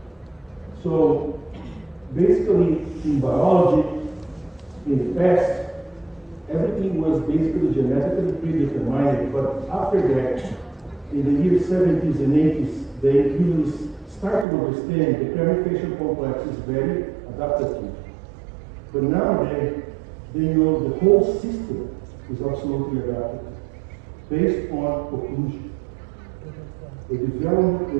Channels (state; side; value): drops out; left; at 14.5 s